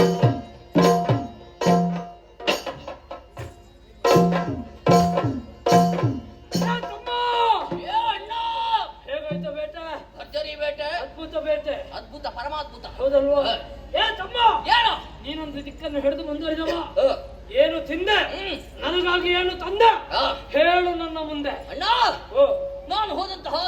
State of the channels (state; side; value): identical; both; correlation 1.00